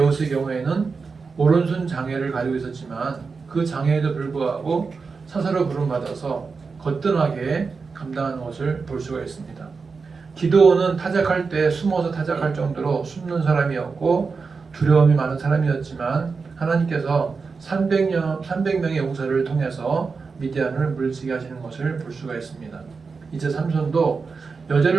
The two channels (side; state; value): left; quieter; 4.8 dB